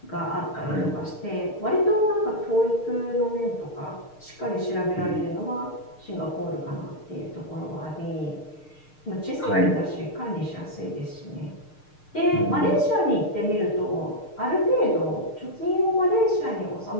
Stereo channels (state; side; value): late; right; 6.6 ms